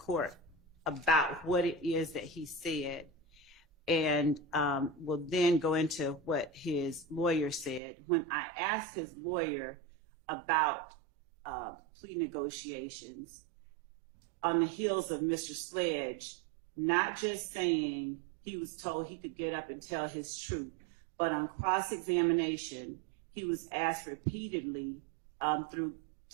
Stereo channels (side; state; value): left; drops out; at 7.8 s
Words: about what it is that he said, and we'll then go into what his lawyer said. When I asked his lawyer about plea negotiations on the heels of Mr. Sledge, not just saying he was told he could get up and tell his truth, but on cross-examination, he was asked repeatedly through